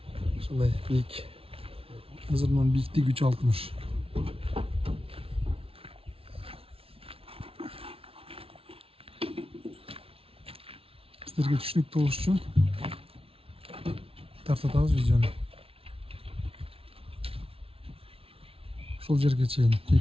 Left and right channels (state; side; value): late; left; 0.27 ms